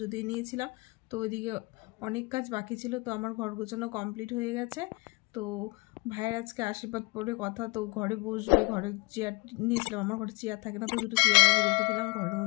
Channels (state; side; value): quieter; right; 26.5 dB